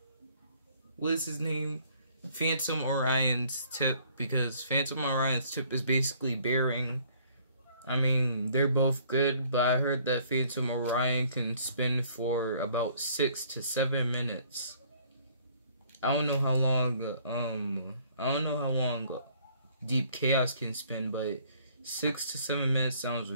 what is his name? Phantom Orion's tip, because Phantom Orion's tip is basically bearing. I mean, they're both good, but I heard that Phantom Orion can spin for about 6 to 7 minutes. I don't know how long Deep Chaos can spin, but 6 to 7 minutes sounds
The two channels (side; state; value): both; inverted; correlation -0.60